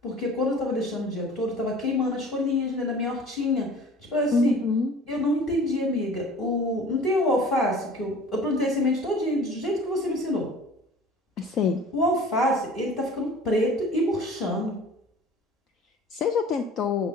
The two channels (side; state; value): both; normal; correlation 0.45